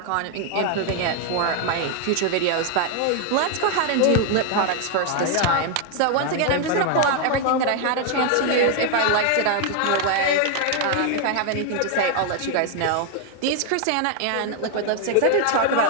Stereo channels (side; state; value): both; different; correlation 0.00